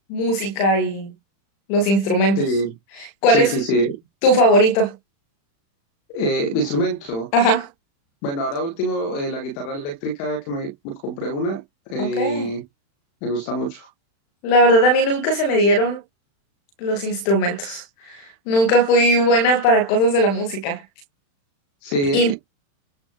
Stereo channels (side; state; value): right; late; 35 ms